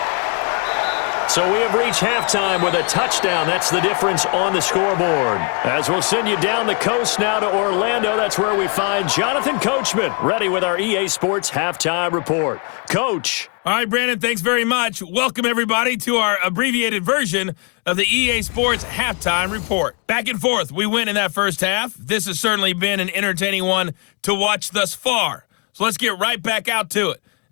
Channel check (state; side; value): quieter; right; 36.7 dB